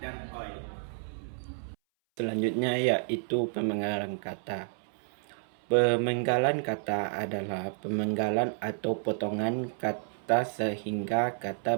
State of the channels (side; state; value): left; silent; 57 dB below the other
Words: OI. Selanjutnya yaitu pemenggalan kata. Pemenggalan kata adalah pemenggalan atau potongan kata sehingga kata